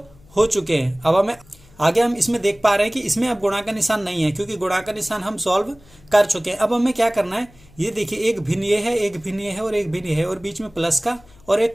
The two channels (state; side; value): noise; left; hum, 26 dB below the sound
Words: हो चुके हैं। अब हमें आगे हम इसमें देख पा रहे हैं कि इसमें अब गुणा का निशान नहीं है, क्योंकि गुणा का निशान हम सॉल्व कर चुके हैं। अब हमें क्या करना है, ये देखिए एक भिन्न ये है, एक भिन्न ये है और एक भिन्न ये है, और बीच में प्लस का और